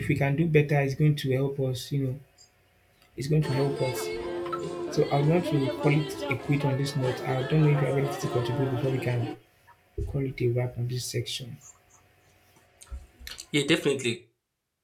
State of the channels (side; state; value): both; identical; correlation 1.00